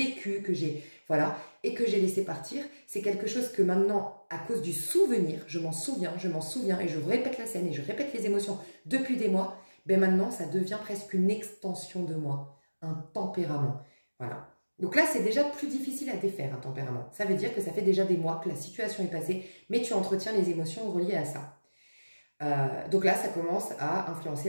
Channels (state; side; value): inverted; both; correlation -1.00